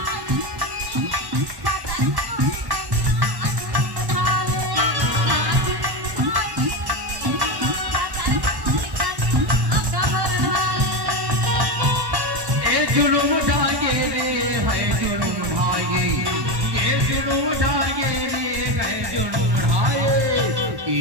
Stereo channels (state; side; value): late; left; 1.1 ms